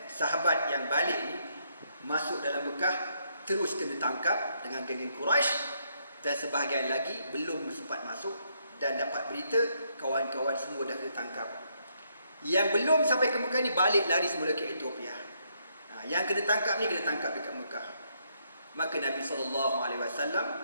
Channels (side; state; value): both; inverted; correlation -0.74